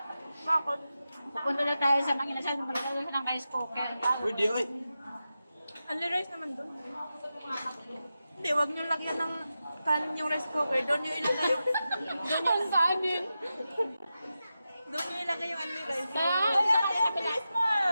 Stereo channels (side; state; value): both; inverted; correlation -0.91